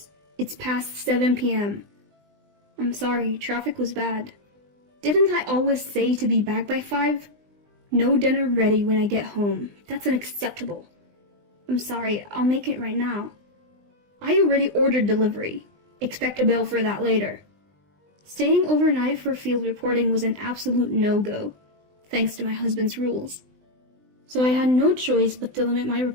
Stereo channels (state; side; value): late; left; 20 ms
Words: It's past 7 p.m. "I'm sorry, traffic was bad." Didn't I always say to be back by 5? No dinner ready when I get home. That's unacceptable. I'm sorry, I'll make it right now. I already ordered delivery. Expect a bill for that later. Staying overnight for field reporting was an absolute no-go, thanks to my husband's rules. So I had no choice but to limit my